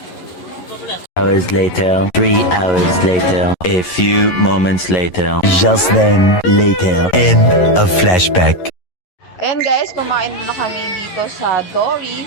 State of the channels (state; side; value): late; right; 11 ms